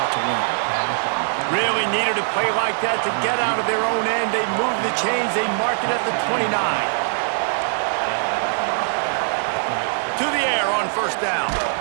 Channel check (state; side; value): silent; left; digital silence